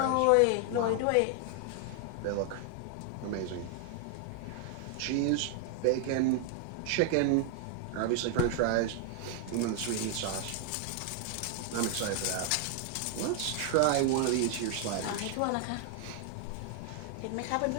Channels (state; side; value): different; both; correlation 0.00